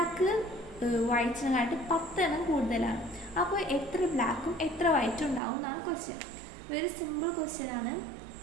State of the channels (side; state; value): left; drops out; at 5.4 s